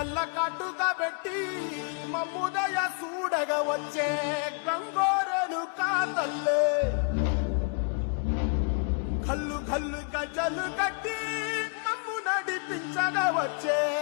కాటుగా పెట్టి మమ్ముదయ చూడగా వచ్చే గంగోరెను కా తల్లి, కల్లు కల్లు గజలు కట్టి మమ్ము నడిపించగా వచ్చే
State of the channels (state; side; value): quieter; right; 39.7 dB